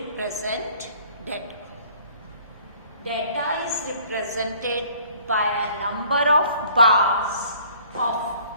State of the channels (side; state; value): both; inverted; correlation -0.56